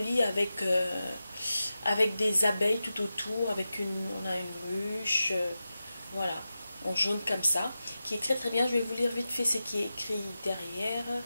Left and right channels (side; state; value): both; inverted; correlation -0.92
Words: avec des abeilles tout autour, on a une ruche, voilà, en jaune comme ça, qui est très bien. Je vais vous lire vite fait ce qui est écrit derrière.